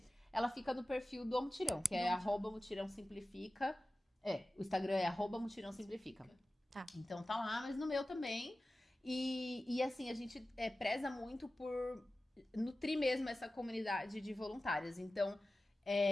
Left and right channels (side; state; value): both; normal; correlation 0.96